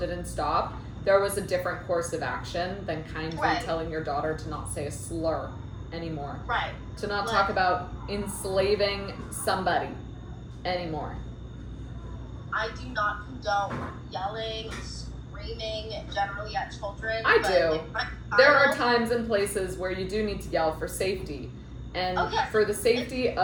stop, there was a different course of action than kindly telling your daughter to not say a slur anymore. Right. To not talk about enslaving somebody anymore. I do not condone yelling, screaming generally at children. I but do. Like there are times and places where you do need to yell for safety. And for the safety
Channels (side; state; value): both; identical; correlation 1.00